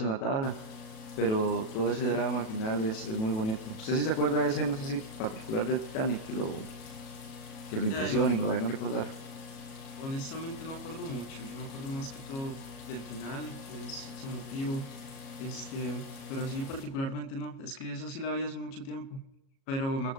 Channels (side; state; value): right; late; 38 ms